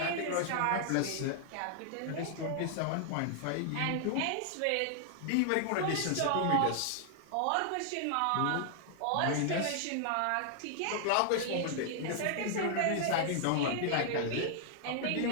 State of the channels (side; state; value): both; different; correlation 0.00